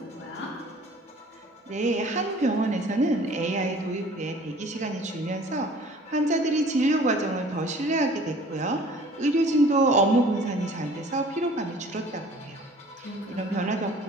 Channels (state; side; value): normal; both; correlation 0.50